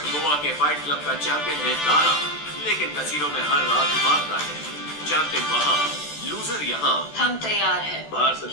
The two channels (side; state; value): right; late; 14 ms